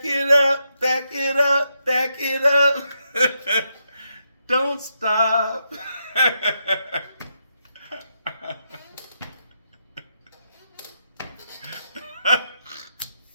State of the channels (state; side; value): inverted; both; correlation -0.82